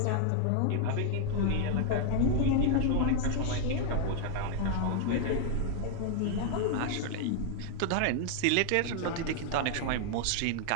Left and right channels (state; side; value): different; both; correlation 0.00